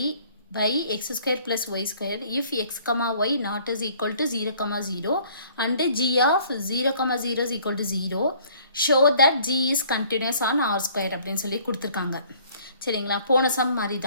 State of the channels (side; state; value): both; inverted; correlation -0.57